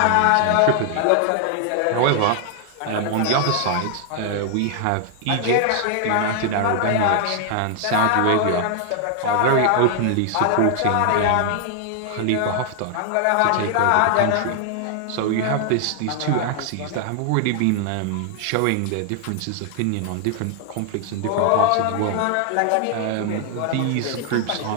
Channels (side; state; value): both; different; correlation 0.00